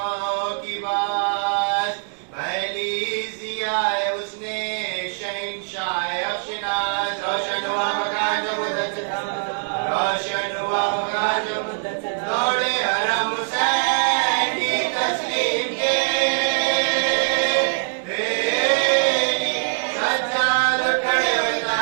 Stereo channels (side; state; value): left; silent; digital silence